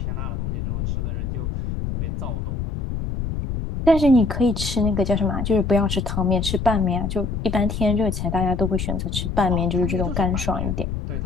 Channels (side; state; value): left; noise; rumble, 3 dB below the sound